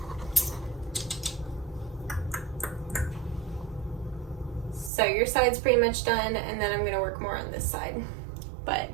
So your side's pretty much done, and then I'm gonna work more on this side. But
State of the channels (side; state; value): left; drops out; at 4.9 s